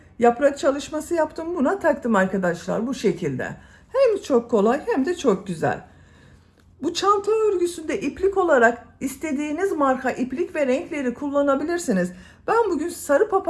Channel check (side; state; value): both; identical; correlation 1.00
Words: yaprak çalışması yaptım. Buna taktım arkadaşlar bu şekilde. Hem çok kolay hem de çok güzel. Bu çanta örgüsünde iplik olarak istediğiniz marka iplik ve renkleri kullanabilirsiniz. Ben bugün sarı